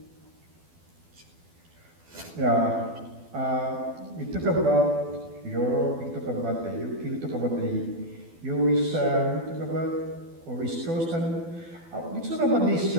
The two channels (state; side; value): late; left; 12 ms